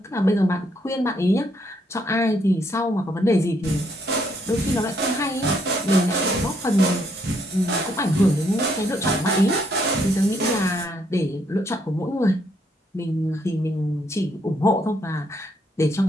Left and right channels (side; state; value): both; normal; correlation 0.72